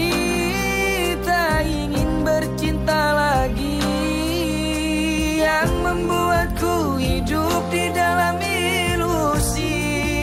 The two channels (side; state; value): both; identical; correlation 1.00